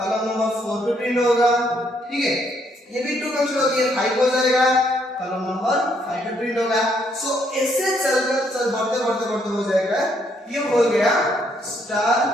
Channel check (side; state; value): both; normal; correlation 0.71